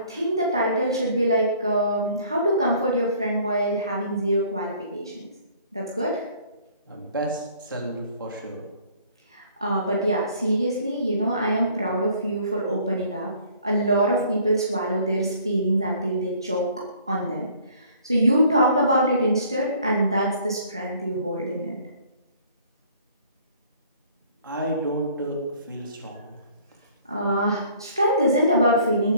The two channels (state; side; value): inverted; both; correlation -0.56